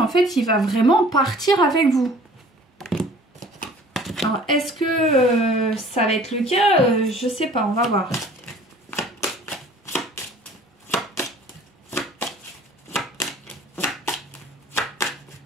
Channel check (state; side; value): normal; both; correlation 0.50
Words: fait il va vraiment partir avec vous. Alors est-ce que ça va être le cas? Je sais pas, on va voir.